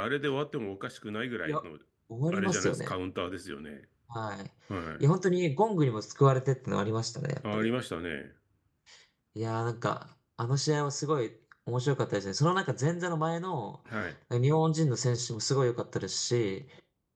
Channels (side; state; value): both; identical; correlation 1.00